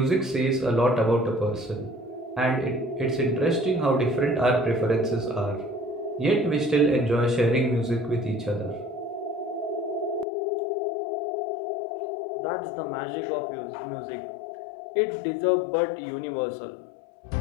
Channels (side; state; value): right; drops out; at 10.2 s